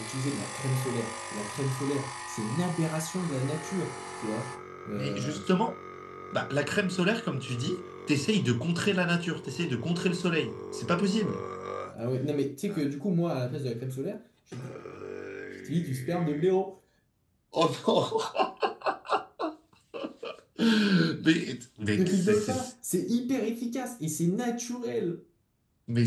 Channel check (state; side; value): identical; both; correlation 1.00